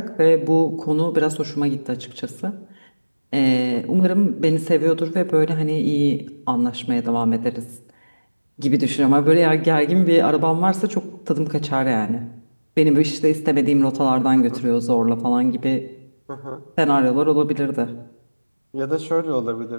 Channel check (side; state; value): both; inverted; correlation -1.00